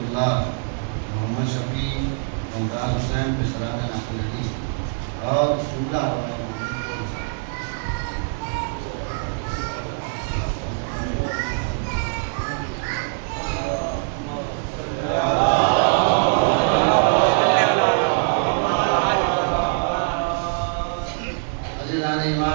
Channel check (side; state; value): left; silent; 59 dB below the other